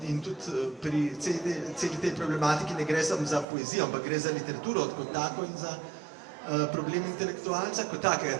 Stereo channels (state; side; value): drops out; left; at 3.5 s